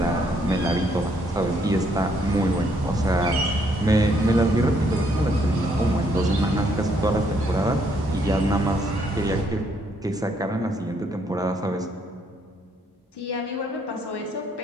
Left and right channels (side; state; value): both; normal; correlation 0.70